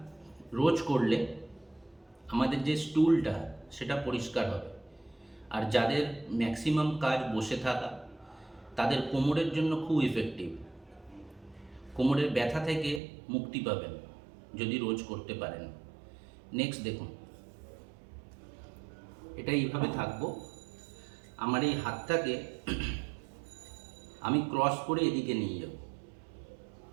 রোজ করলে আমাদের যে স্টুলটা সেটা পরিষ্কার হবে। আর যাদের ম্যাক্সিমাম কাজ বসে থাকা, তাদের কোমরের জন্য খুব ইফেক্টিভ, কোমরের ব্যথা থেকে মুক্তি পাবেন যদি রোজ করতে পারেন। নেক্সট দেখুন, এটা এইভাবে থাকবো, আমার এই হাতটাকে আমি ক্রস করে এদিকে নিয়ে যাব,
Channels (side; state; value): left; drops out; at 13.0 s